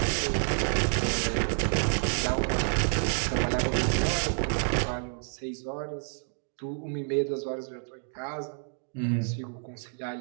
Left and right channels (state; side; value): silent; left; 55 dB below the other